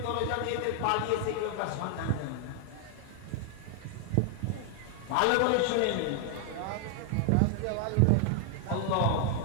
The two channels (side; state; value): both; different; correlation 0.00